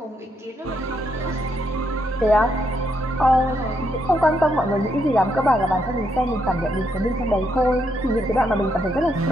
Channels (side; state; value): both; normal; correlation 0.77